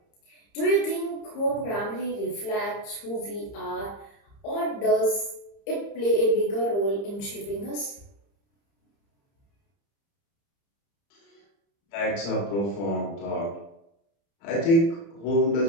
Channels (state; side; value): late; right; 30 ms